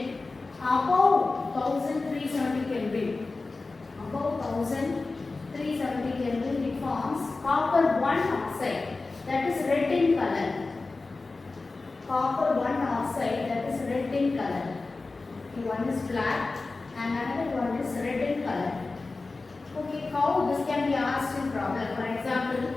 above 1370 Kelvin. It forms copper 1 oxide, that is red in color. One is black and another one is red in color. Okay, how this can be asked in problem? For example,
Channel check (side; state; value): right; quieter; 3.6 dB